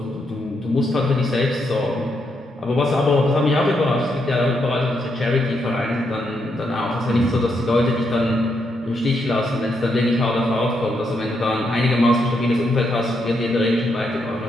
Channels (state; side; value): normal; both; correlation 0.79